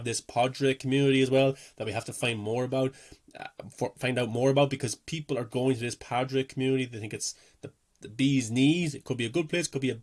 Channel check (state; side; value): identical; both; correlation 1.00